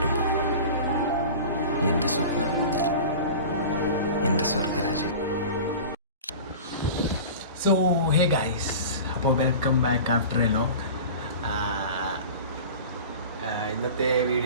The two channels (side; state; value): both; inverted; correlation -0.35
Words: എൻ്റെ സ്വപ്നം, എൻ്റെ സ്വർഗരാജ്യം. സോ ഹേ ഗൈസ്, അപ്പോൾ welcome back after A long. ഇന്നത്തെ